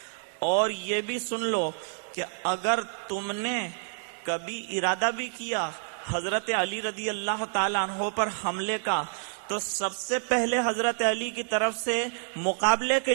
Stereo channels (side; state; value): left; silent; digital silence